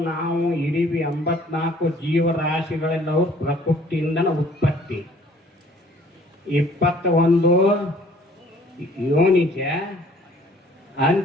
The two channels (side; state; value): both; normal; correlation 0.56